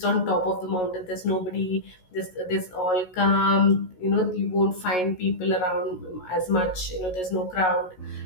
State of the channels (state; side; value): late; right; 16 ms